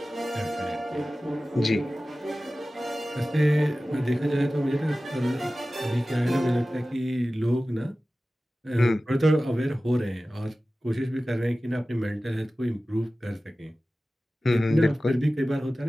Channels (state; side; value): normal; both; correlation 0.96